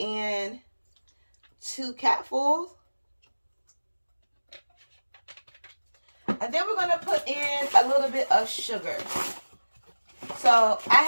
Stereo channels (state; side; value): inverted; both; correlation -1.00